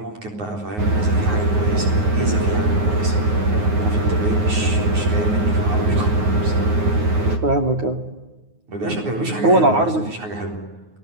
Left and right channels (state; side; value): late; left; 9.5 ms